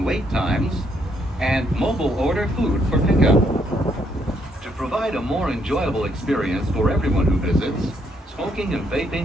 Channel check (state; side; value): normal; both; correlation 0.72